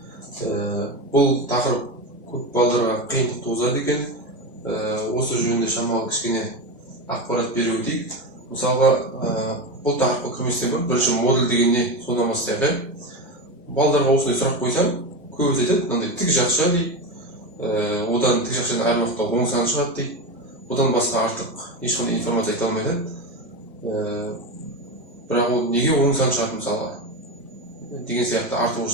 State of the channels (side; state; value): both; normal; correlation 0.18